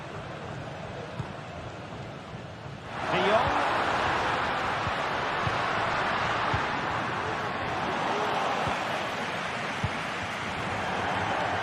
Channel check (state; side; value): identical; both; correlation 1.00